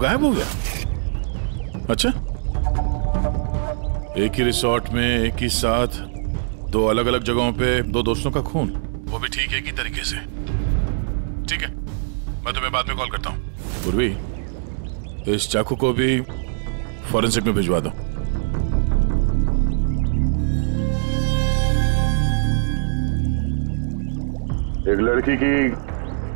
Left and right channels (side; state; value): left; silent; digital silence